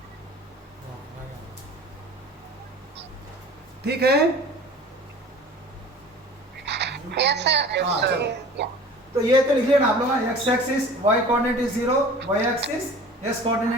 ठीक है। Yes, sir. हाँ, चलो। Yeah. तो ये तो लिख लेना आप लोग, x axis y coordinate is 0, y axis s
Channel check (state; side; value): normal; both; correlation 0.43